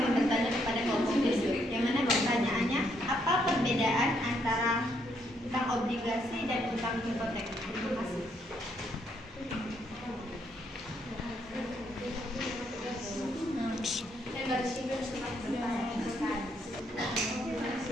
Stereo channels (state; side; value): normal; both; correlation 0.74